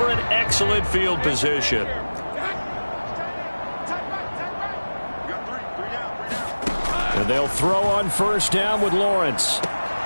an excellent field position. And they'll throw on 1st down with Lawrence.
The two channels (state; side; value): inverted; both; correlation -1.00